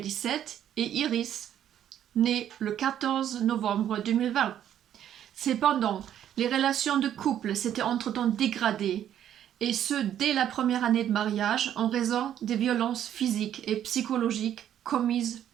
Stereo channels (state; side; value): quieter; left; 10.5 dB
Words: et Iris, née le 14 novembre 2020. Cependant, les relations de couple s'étaient entre-temps dégradées, et ce dès la première année de mariage en raison des violences physiques et psychologiques commises